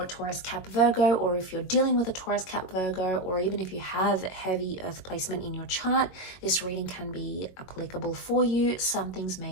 Taurus, Cap, Virgo, or if you're dealing with a Taurus, Cap, Virgo, or even if you have heavy Earth placement in your chart, this reading can be applicable for you. Some things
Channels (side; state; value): right; late; 22 ms